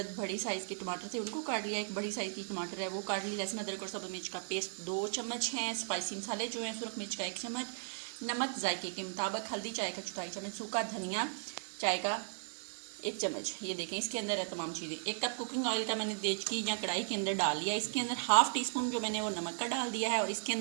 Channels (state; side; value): silent; left; digital silence